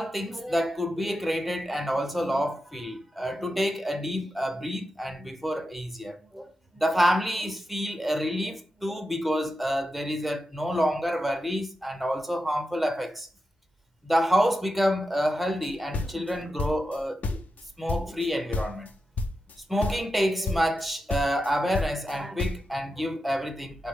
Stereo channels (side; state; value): both; normal; correlation 0.89